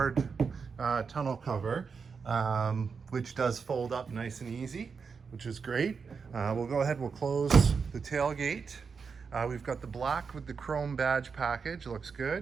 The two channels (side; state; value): left; quieter; 5.5 dB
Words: tonneau cover, which does fold up nice and easy, which is great. We'll go ahead, we'll close the tailgate. We've got the black with the chrome badge package, looks